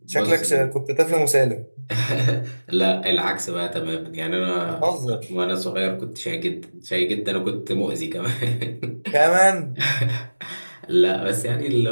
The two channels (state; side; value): inverted; both; correlation -1.00